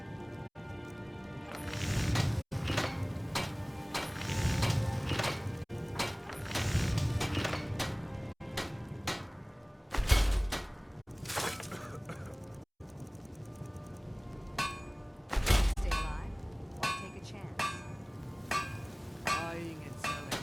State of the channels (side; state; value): both; identical; correlation 1.00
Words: Stay alive. Why take a chance? Buying and selling